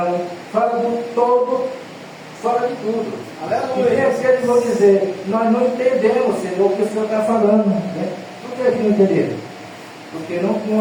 fala do todo fora de tudo. Aleluia. E tem aqueles que vão dizer, nós não entendemos, Senhor, o que o Senhor está falando. Né? Por que não entenderam? Porque não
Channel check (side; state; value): both; identical; correlation 1.00